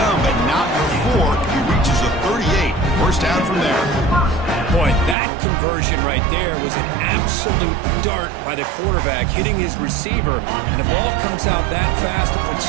but not before he reaches the 38. First down from there. Boy, that conversion right there was an absolute dart by the quarterback, hitting his receiver, and the ball comes out that fast to put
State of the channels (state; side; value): drops out; left; at 5.2 s